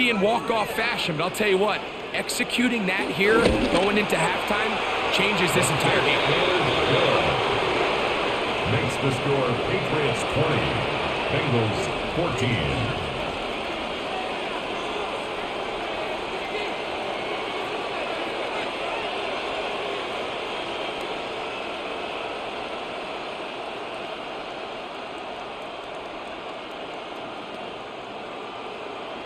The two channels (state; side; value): identical; both; correlation 1.00